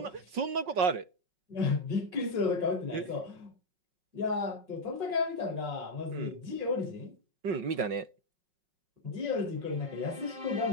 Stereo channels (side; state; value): left; late; 5.4 ms